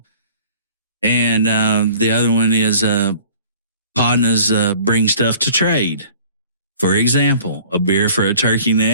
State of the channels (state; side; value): inverted; both; correlation -0.50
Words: And the other one is Podnas bring stuff to trade. For example, a beer for a turkey